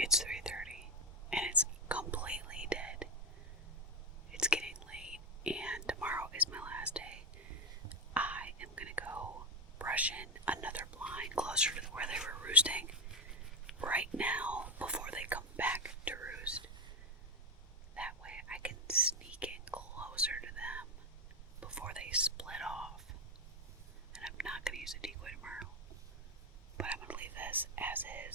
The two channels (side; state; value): both; normal; correlation 0.11